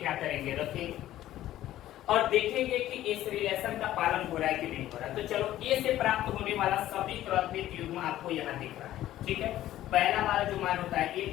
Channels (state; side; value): quieter; right; 13.7 dB